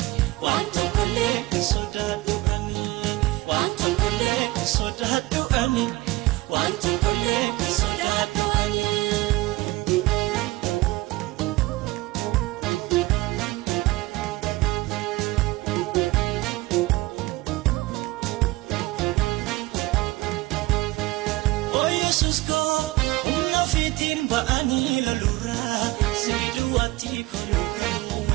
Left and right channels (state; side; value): quieter; left; 19.8 dB